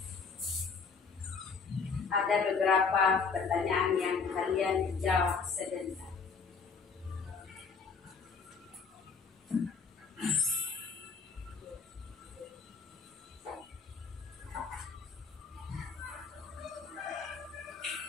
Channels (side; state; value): right; quieter; 5.2 dB